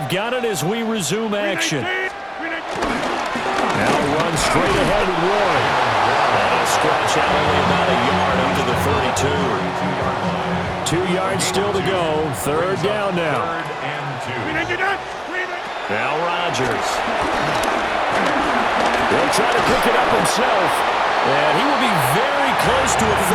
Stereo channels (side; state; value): both; identical; correlation 1.00